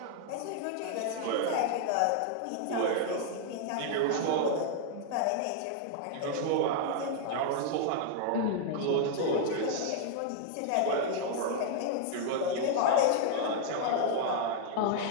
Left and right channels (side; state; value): both; different; correlation 0.00